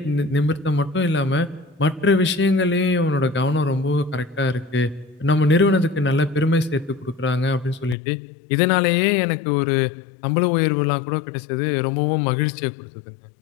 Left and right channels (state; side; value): drops out; right; at 8.0 s